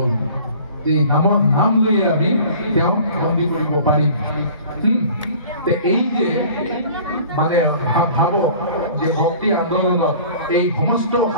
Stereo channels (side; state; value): both; inverted; correlation -0.46